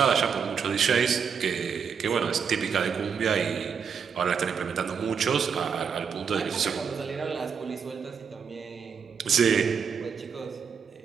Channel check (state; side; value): quieter; left; 6.6 dB